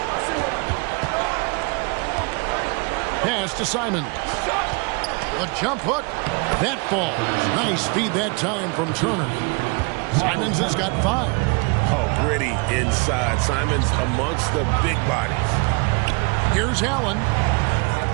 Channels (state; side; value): quieter; left; 31.0 dB